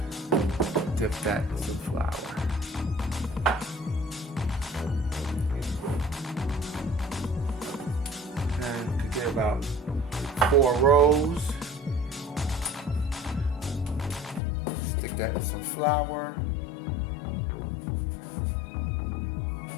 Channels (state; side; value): drops out; right; at 14.4 s